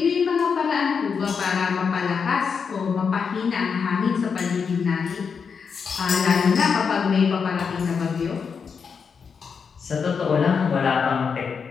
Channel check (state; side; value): quieter; right; 6.0 dB